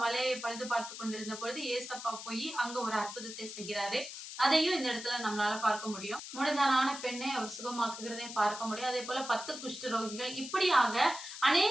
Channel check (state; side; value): noise; left; hiss, 10 dB below the sound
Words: வலையை பழுது பார்த்து கொண்டிருந்த பொழுது ஏசப்பா போய் அங்க ஒரு அற்புதத்தை செய்கிறாரு. அதையும் இந்த இடத்துல நம்மளால பார்க்க முடியும். முடந்தான பெண்ணை அவர் சுகமாக்குகிறதையும் பார்க்க முடியும். அதே போல 10 குஷ்டரோகிகள், இப்படியாக